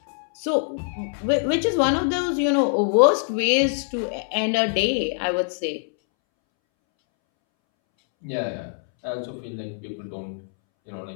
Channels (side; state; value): right; silent; 63 dB below the other